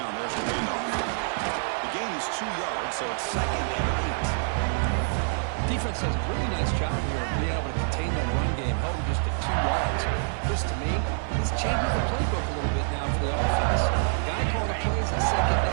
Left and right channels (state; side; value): silent; left; digital silence